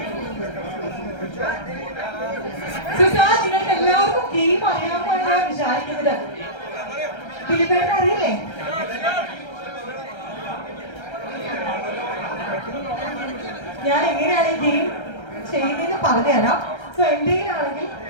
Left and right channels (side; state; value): right; late; 1.3 ms